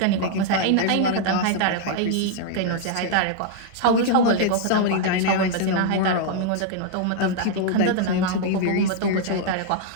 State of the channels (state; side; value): different; both; correlation 0.00